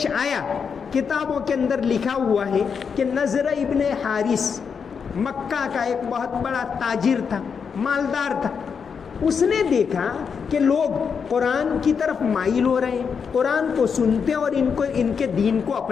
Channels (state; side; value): quieter; right; 6.3 dB